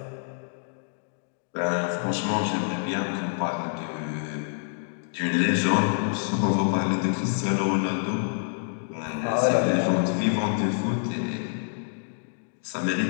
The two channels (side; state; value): right; silent; digital silence